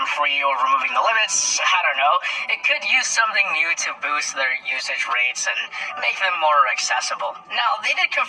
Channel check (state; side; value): identical; both; correlation 1.00